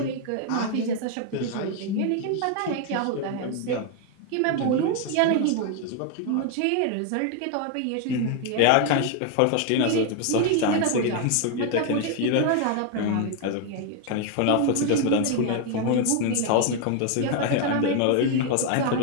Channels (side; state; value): both; different; correlation 0.01